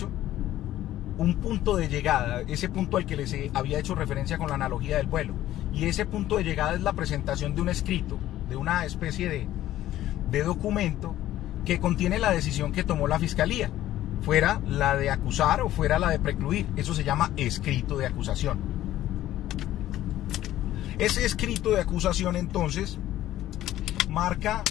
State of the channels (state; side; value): quieter; right; 13.7 dB